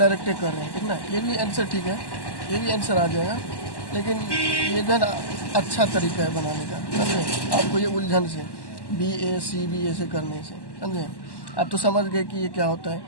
कर रहे हैं, ठीक ना, ये भी आंसर ठीक है, ये भी आंसर आ जाएगा, लेकिन ये जो है ना अच्छा तरीका है बनाने का, समझे, आपको ये उलझन से BACB ऐसे करने से, समझे, आप तो समझ गए कि ये क्या होता है,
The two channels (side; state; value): right; late; 1.1 ms